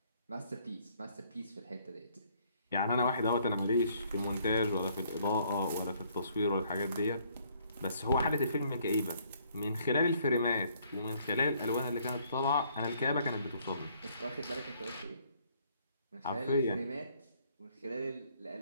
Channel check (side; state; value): both; inverted; correlation -0.65